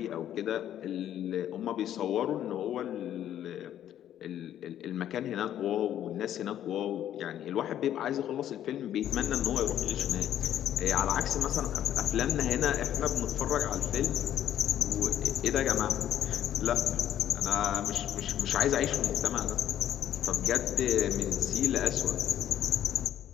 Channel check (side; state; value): right; quieter; 11.1 dB